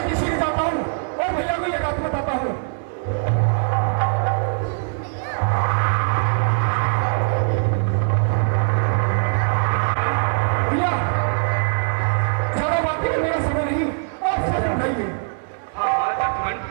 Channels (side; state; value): left; silent; 65 dB below the other